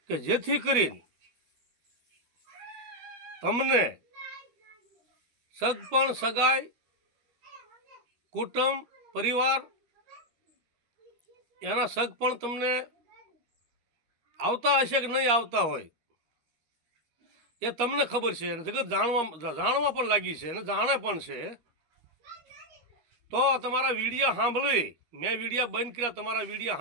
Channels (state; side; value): late; left; 13 ms